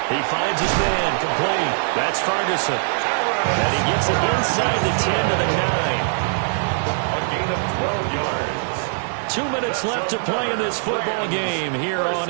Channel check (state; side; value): silent; left; digital silence